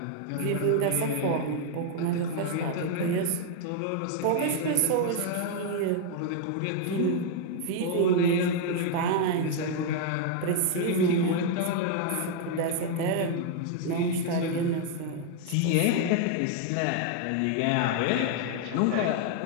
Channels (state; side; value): different; both; correlation 0.00